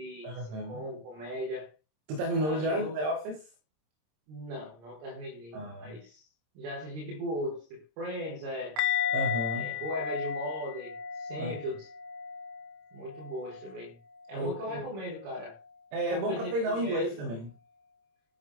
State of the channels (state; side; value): late; left; 26 ms